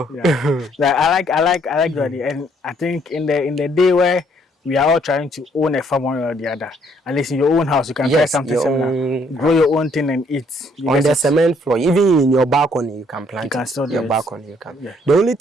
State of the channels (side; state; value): both; normal; correlation 0.66